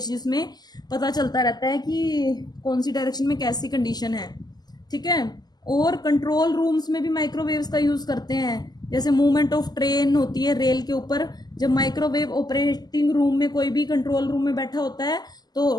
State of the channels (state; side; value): late; right; 0.20 ms